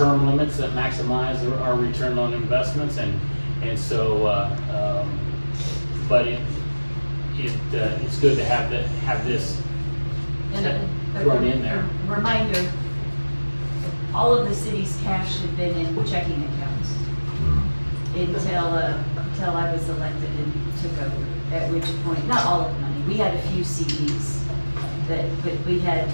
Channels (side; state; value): both; inverted; correlation -1.00